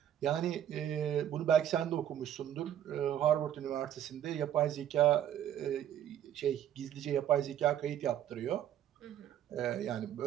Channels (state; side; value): quieter; left; 10.7 dB